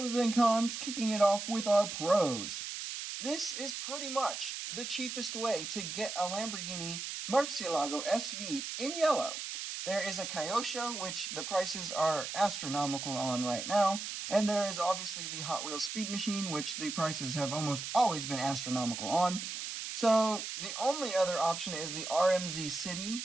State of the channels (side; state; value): right; noise; hiss, 6 dB below the sound